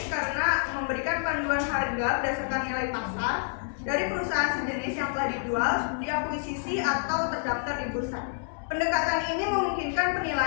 karena memberikan panduan harga berdasarkan nilai pasar dari perusahaan sejenis yang telah dijual, diakuisisi atau terdaftar di bursa. Pendekatan ini memungkinkan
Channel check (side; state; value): right; silent; digital silence